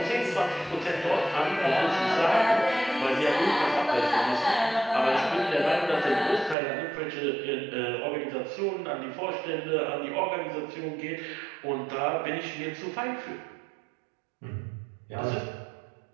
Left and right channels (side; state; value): left; drops out; at 6.6 s